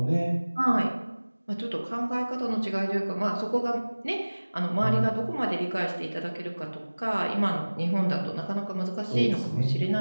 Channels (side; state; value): both; inverted; correlation -1.00